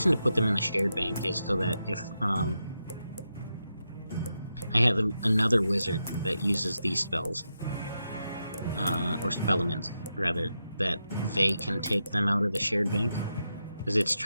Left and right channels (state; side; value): inverted; both; correlation -0.87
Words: to put them in the shared bank is so that if I have another wizard that uses these spells, or spellaments, rather, that they can take them out of the shared bank, because it's